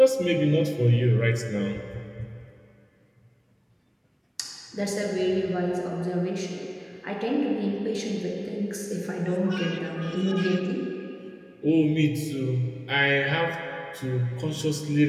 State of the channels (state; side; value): identical; both; correlation 1.00